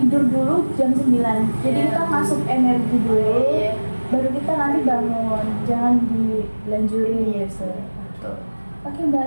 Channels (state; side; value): inverted; both; correlation -1.00